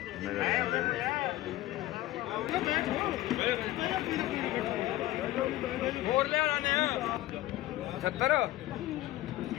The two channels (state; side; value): quieter; right; 15.8 dB